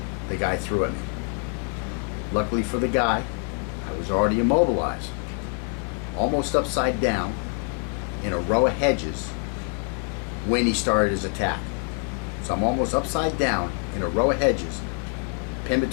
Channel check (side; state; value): right; quieter; 37.1 dB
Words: the guy threw at me. Luckily for the guy, I was already immobilized, almost upside down in a row of hedges when he started his attack. So I'm almost upside down in a row of hedges, pinned